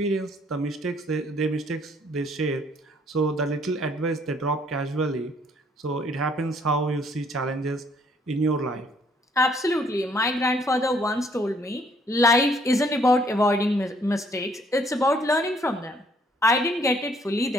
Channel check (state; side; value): normal; both; correlation 0.64